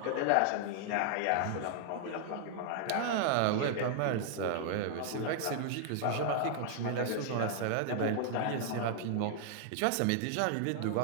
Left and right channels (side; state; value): both; different; correlation 0.00